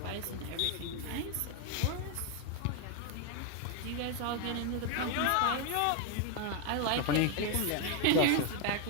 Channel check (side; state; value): both; different; correlation 0.01